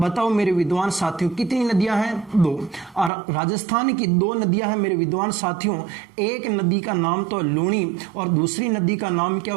मेरे विद्वान साथियों कितनी नदियां हैं? दो। और राजस्थान की दो नदियां हैं मेरे विद्वान साथियों। एक नदी का नाम तो लूणी और दूसरी नदी का नाम क्या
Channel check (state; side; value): drops out; left; at 3.1 s